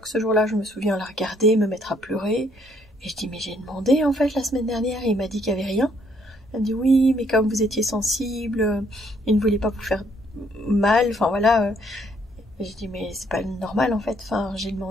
ce jour-là, je me souviens la regarder, me mettre à pleurer, et je dis mais j'ai demandé en fait la semaine dernière et il m'a dit qu'il y avait rien. Elle me dit oui mais comme vous étiez sensible, il ne voulait pas vous faire mal, enfin voilà. Et je dis mais c'est pas normal en fait, enfin j'ai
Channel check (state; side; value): normal; both; correlation 0.67